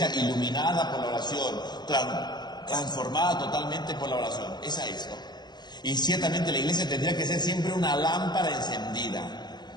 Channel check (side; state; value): right; late; 0.21 ms